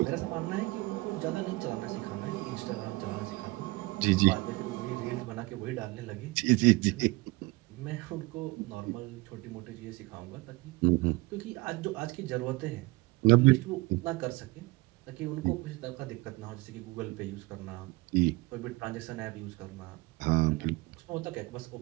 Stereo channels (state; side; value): quieter; left; 22.5 dB